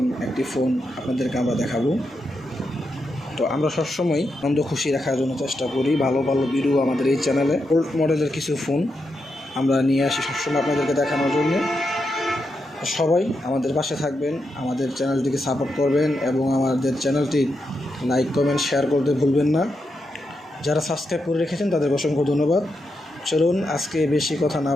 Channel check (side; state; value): both; normal; correlation 0.85